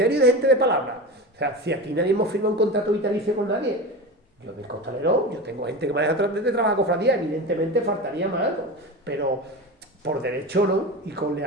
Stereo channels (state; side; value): normal; both; correlation 0.26